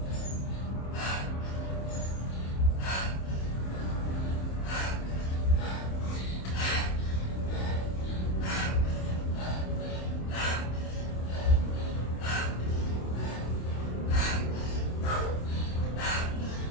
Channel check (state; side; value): late; right; 27 ms